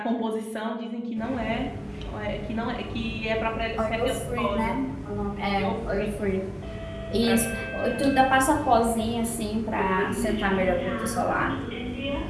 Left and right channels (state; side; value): identical; both; correlation 1.00